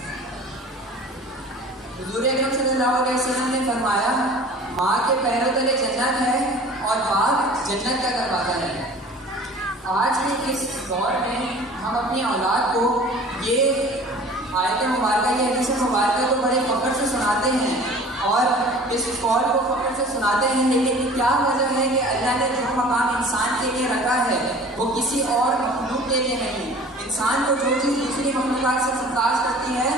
حضور اکرم صلی اللہ علیہ وسلم نے فرمایا, ماں کے پیروں تلے جنت ہے اور باپ جنت کا دروازہ ہے. آج کے اس دور میں ہم اپنی اولاد کو یہ آیت مبارکہ, یہ حدیث مبارکہ کو بڑے فخر سے سناتے ہیں اور اس قول کو فخر سے سناتے ہیں, لیکن کیا وجہ ہے کہ اللہ نے جو مقام انسان کے لیے رکھا ہے وہ کسی اور مخلوق کے لیے نہیں. انسان کو جو چیز دوسری مخلوقات سے ممتاز کرتی ہے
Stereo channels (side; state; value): both; normal; correlation 0.45